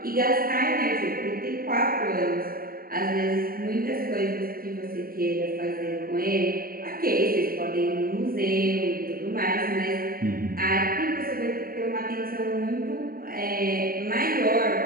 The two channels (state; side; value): late; left; 0.43 ms